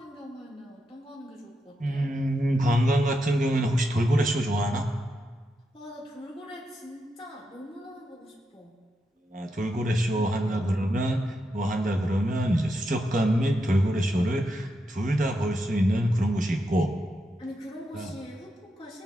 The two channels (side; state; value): both; normal; correlation 0.84